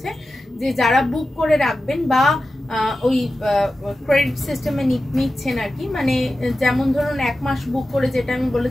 যে যারা বুক করে রাখবেন বা ওই ক্রেডিট সিস্টেমে নিচ্ছেন আর কি, মানে যেমন ধরুন 1 মাস বুক করে, যেটা আমি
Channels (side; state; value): both; normal; correlation 0.93